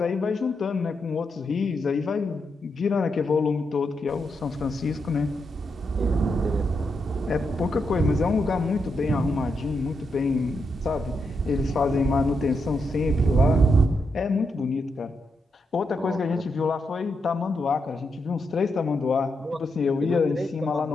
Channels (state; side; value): normal; both; correlation 0.83